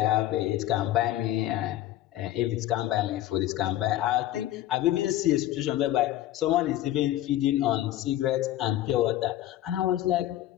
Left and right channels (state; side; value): quieter; right; 13.8 dB